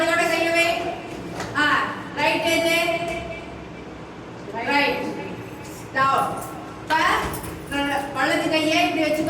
கையை வை ரைட் ஏஜ் ரைட் டவுன் வலது கையை இப்படி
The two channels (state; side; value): identical; both; correlation 1.00